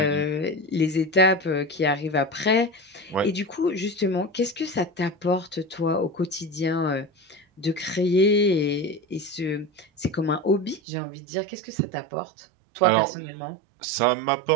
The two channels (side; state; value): left; drops out; at 10.8 s